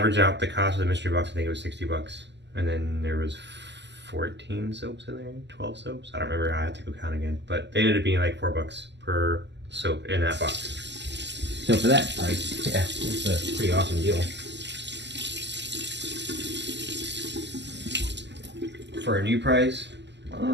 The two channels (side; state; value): left; late; 0.51 ms